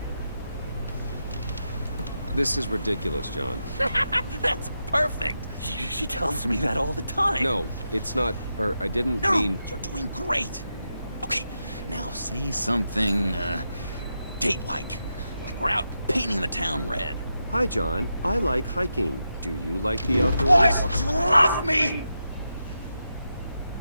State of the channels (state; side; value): inverted; both; correlation -0.87